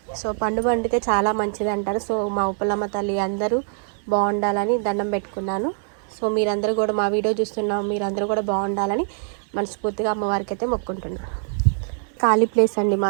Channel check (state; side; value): silent; left; 57 dB below the other